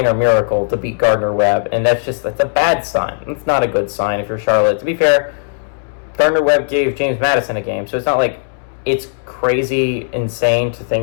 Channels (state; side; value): silent; right; 65 dB below the other